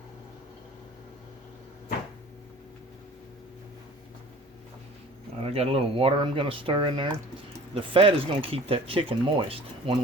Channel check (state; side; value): normal; both; correlation 0.46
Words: I got a little water I'm going to stir in there. The fat is going to keep that chicken moist when